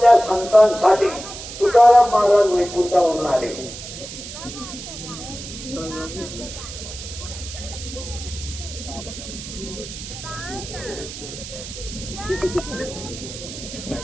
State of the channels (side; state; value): right; noise; hiss, 11 dB below the sound